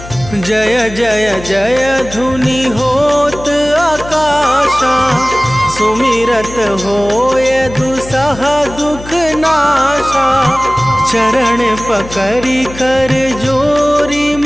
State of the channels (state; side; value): noise; left; hum, 14 dB below the sound